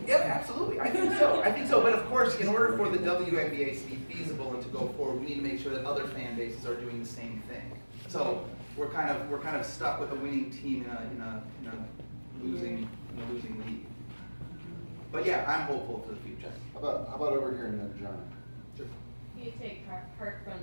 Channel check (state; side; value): inverted; both; correlation -1.00